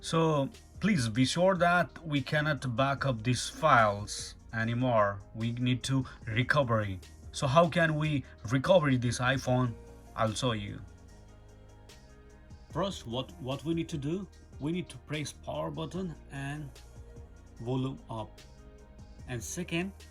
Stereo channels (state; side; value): identical; both; correlation 1.00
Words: So please be sure that we cannot back up these files anymore. We need to recovery. So how can we recover this iPhone? I'll show you. First, what we need to do, we need to press power button and volume up. And second,